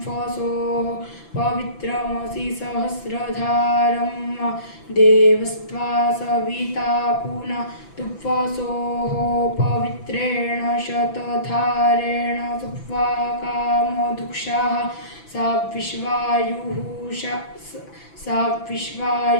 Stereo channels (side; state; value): right; late; 6.0 ms